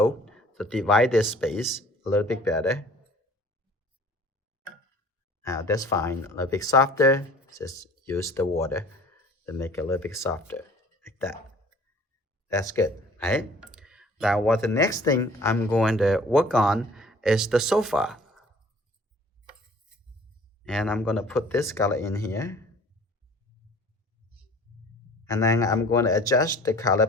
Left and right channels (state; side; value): normal; both; correlation 0.50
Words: to divide this space a little bit better. Now that's fine. A little bit softer. Just use the water to make it a little bit softer, like that. That's good, right? Now what the next thing I'm going to work on is the sofa. And I'm going to put this color in here. And then I'm going to adjust the color